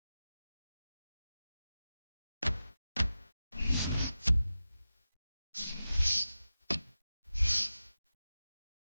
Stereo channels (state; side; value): inverted; both; correlation -0.93